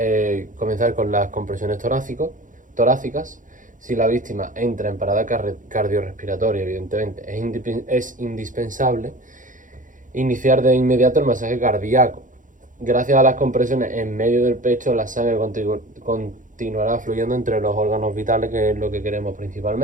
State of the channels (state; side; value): late; left; 0.38 ms